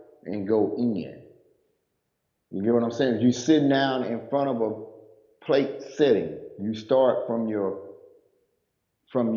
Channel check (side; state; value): both; identical; correlation 1.00